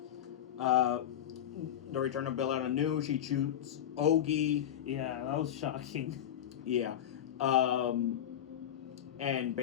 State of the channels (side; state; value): right; quieter; 10.6 dB